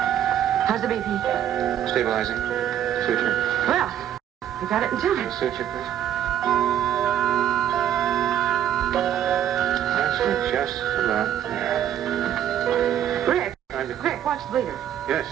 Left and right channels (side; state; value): left; quieter; 10.5 dB